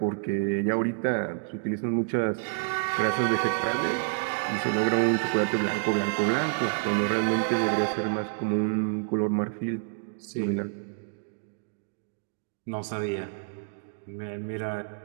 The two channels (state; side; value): silent; left; digital silence